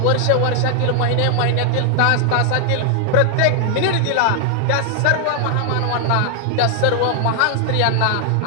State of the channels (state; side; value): different; both; correlation 0.00